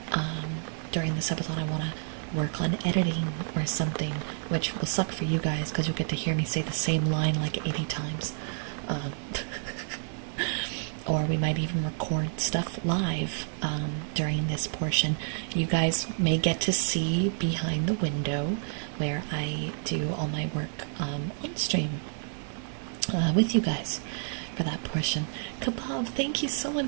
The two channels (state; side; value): silent; left; 58 dB below the other